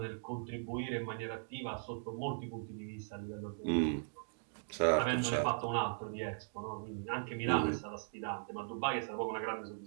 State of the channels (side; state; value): left; silent; digital silence